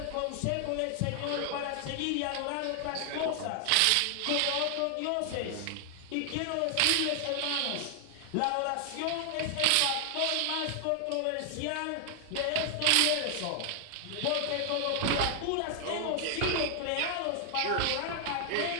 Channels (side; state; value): both; different; correlation 0.00